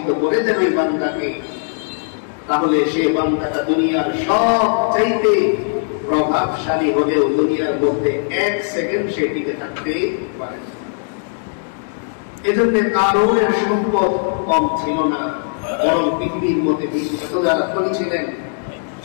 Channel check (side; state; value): right; silent; digital silence